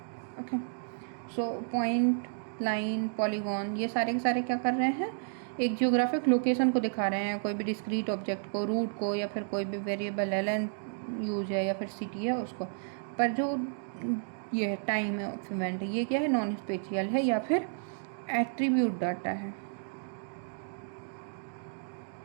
Okay, so point, line, polygon ये सारे के सारे क्या कर रहे हैं, एक जियोग्राफिक लोकेशन को दिखा रहे हैं, कोई भी डिस्क्रीट ऑब्जेक्ट को, रूट को, या फिर कोई भी वेरिएबल एल यूज है या फिर सिटी है उसको। पर जो ये है टाइम ऑफ इवेंट, ये क्या है, नॉन स्पेशियल है या फिर एट्रीब्यूट डाटा है।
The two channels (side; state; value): left; silent; digital silence